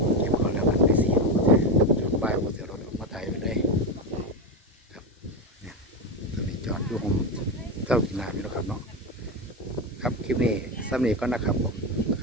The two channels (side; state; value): both; normal; correlation 0.16